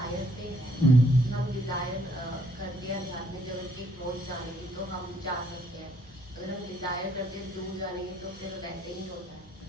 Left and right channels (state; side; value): normal; both; correlation 0.66